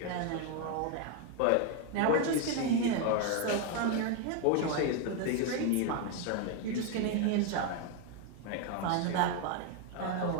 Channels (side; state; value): both; different; correlation 0.01